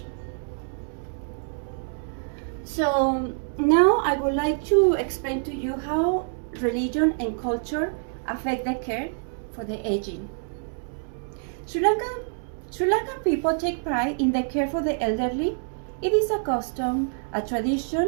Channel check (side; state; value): left; silent; 61 dB below the other